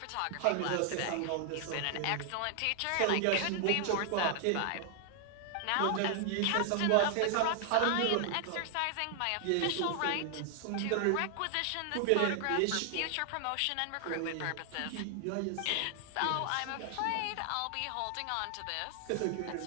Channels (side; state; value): both; different; correlation 0.00